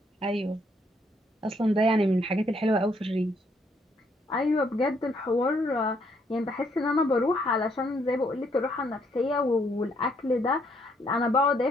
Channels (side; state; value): both; normal; correlation 0.71